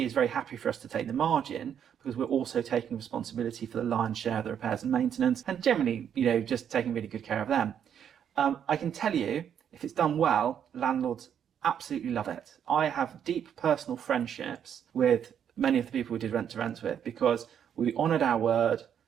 is very happy for us to take the margin, because we're also taking responsibility for the lion's share of the repairs and maintenance, and generally just taking really good care of them. I can tell you, if it's done well, landlords absolutely love it. I have deep personal friendships with many of the people we did rent to rents with, because we honoured our word.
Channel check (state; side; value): quieter; left; 8.8 dB